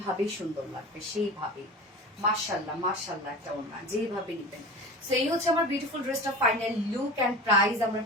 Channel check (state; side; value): normal; both; correlation 0.33